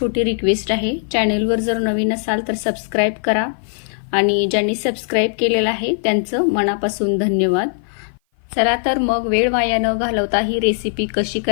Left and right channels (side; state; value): right; silent; 55 dB below the other